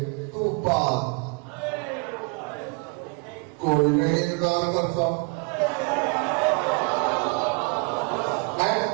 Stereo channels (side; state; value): left; quieter; 32.5 dB